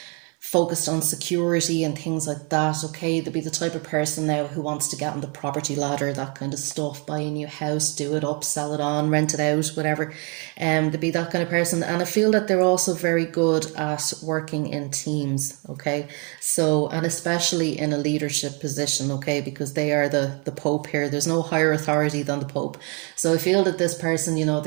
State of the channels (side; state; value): left; quieter; 34.4 dB